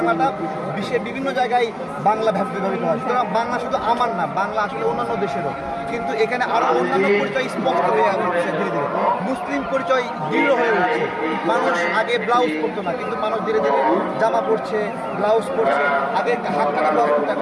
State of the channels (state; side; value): identical; both; correlation 1.00